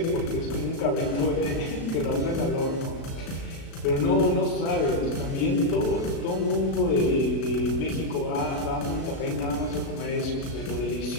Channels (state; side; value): late; right; 36 ms